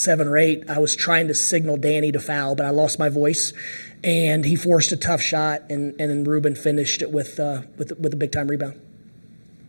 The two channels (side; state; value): both; inverted; correlation -1.00